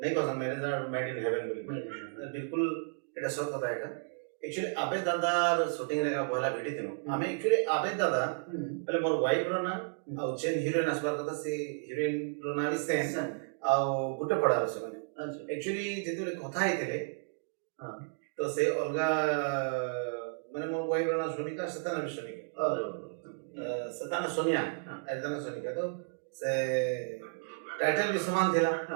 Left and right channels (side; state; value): left; silent; digital silence